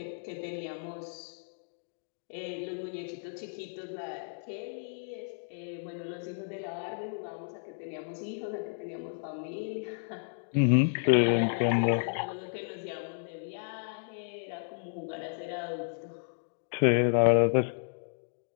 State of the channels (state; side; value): silent; right; digital silence